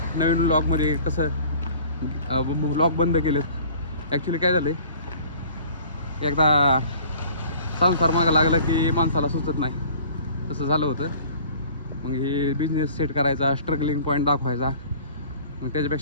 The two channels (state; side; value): inverted; both; correlation -0.49